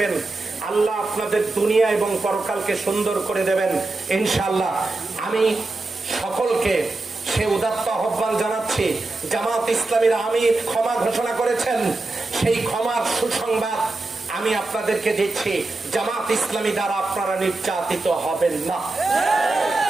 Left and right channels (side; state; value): left; quieter; 3.2 dB